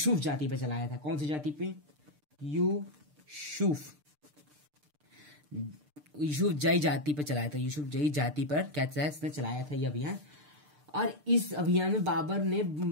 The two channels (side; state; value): left; late; 6.7 ms